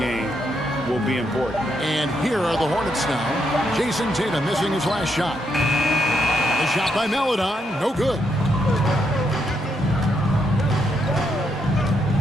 will be important. And here are the Hornets now. Jason Tatum missing his last shot. The shot by Melodon, no good.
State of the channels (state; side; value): normal; both; correlation 0.78